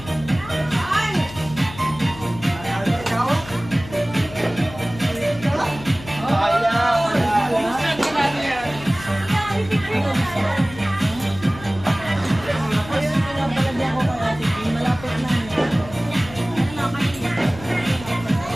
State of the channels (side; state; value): left; noise; hum, 16 dB below the sound